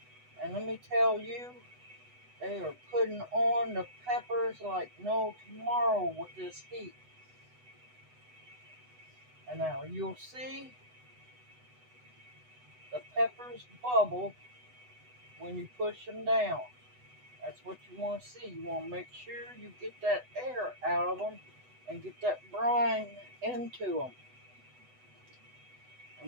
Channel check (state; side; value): late; left; 8.0 ms